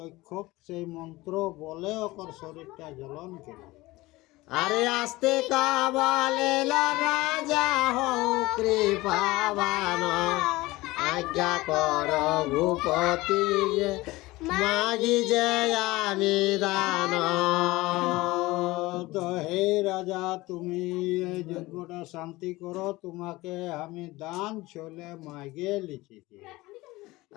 সেই মন্ত্র বলে ওর শরীরটা জ্বলন করে। আরে আস্তিক বলিল রাজা হও কৃপাবান, আজ্ঞা কর ভূপতি মাগি যে আমি দান। তো হে রাজা তুমি এই যজ্ঞটা শান্তি করো, তোমাকে আমি দান চলে মাগে লিখেছি।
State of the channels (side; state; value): right; quieter; 19.9 dB